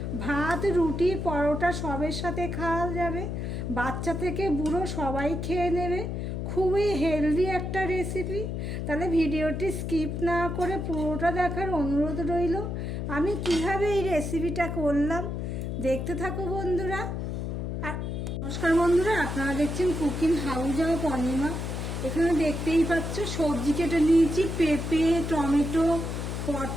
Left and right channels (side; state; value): left; noise; hum, 3 dB below the sound